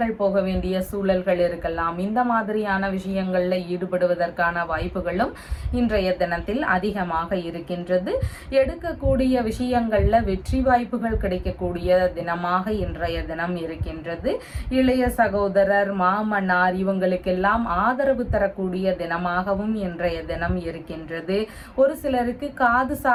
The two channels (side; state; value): both; identical; correlation 1.00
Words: போக வேண்டிய சூழல்கள் இருக்கலாம். இந்த மாதிரியான விஷயங்கள்ல ஈடுபடுவதற்கான வாய்ப்புகளும் இன்றைய தினத்தில் அதிகமாக இருக்கின்றது. எடுக்கக்கூடிய விஷயங்கள்ல வெற்றி வாய்ப்புகள் கிடைக்கக்கூடிய தினமாக இன்றைய தினம் இருக்கின்றது. இளைய சகோதரர், மாமனார் இவங்களுக்கெல்லாம் ஆதரவு தரக்கூடிய தினமாகவும் இன்றைய தினம் இருக்கின்றது. ஒரு சிலருக்கு காது